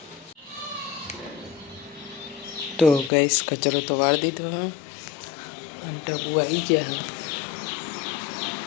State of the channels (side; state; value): right; drops out; at 3.1 s